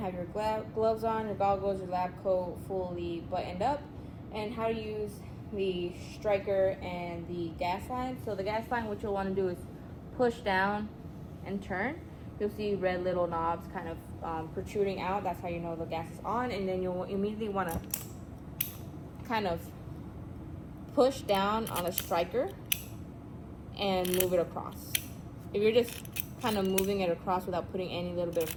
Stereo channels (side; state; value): both; identical; correlation 1.00